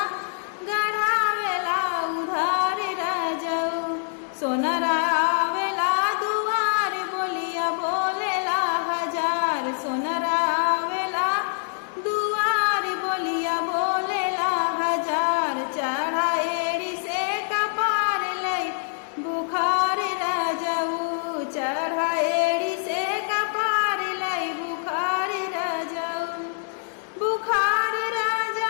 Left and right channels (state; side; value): silent; right; 57 dB below the other